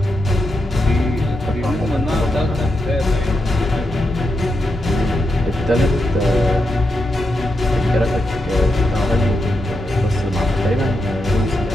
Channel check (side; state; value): both; normal; correlation 0.85